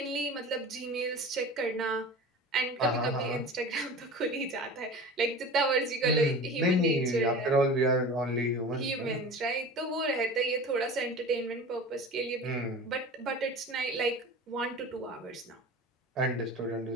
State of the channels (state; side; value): normal; both; correlation 0.35